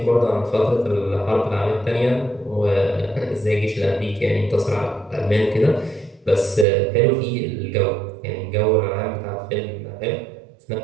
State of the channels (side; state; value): left; drops out; at 6.7 s